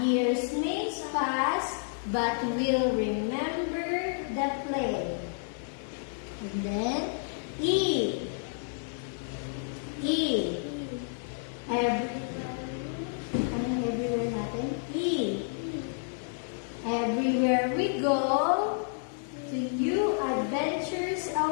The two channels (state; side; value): silent; right; 58 dB below the other